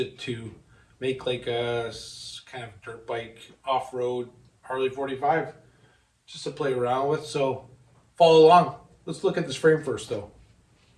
to make like a kind of dirt bike off-road Harley 45 just to play around with. So follow along. Let's look at this frame first though.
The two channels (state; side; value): identical; both; correlation 1.00